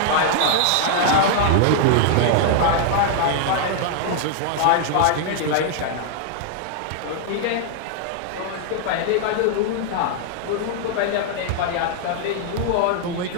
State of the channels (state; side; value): different; both; correlation 0.00